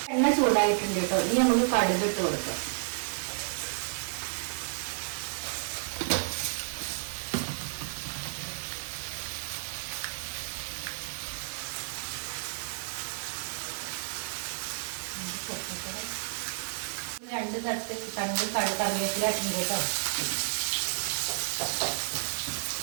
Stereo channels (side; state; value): left; silent; digital silence